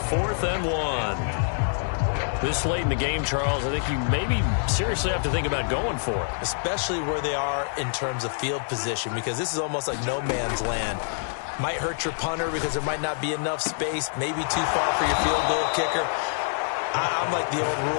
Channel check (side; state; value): right; silent; digital silence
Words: 4th and 1. This late in the game, Charles, I think you maybe seriously have to think about going for it. Especially where they are in terms of field position, because this is almost like no man's land. Might hurt your punter because there might not be enough space, maybe too far for your field goal kicker. I'm like the old